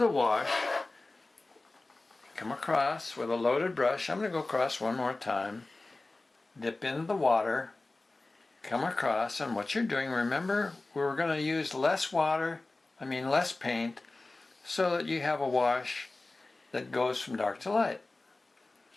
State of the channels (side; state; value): right; quieter; 3.1 dB